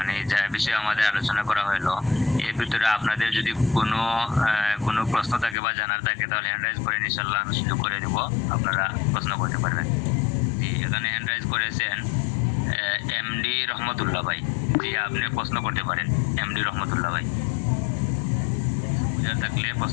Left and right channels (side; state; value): right; drops out; at 5.6 s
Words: যা বিষয়ে আমাদের আলোচনা করা হলো, এর ভিতরে আপনাদের যদি কোনো প্রশ্ন থাকে বা জানার থাকে তাহলে হ্যান্ড রাইজ করে ইনশাআল্লাহ আমি সুযোগ করে দেব, আপনারা প্রশ্ন করতে পারবেন। এখানে হ্যান্ড রাইজ করেছেন এমডি রহমতুল্লাহ ভাই। জি, আপনি প্রশ্ন করতে পারেন এমডি রহমতুল্লাহ ভাই, বুঝার থাকলে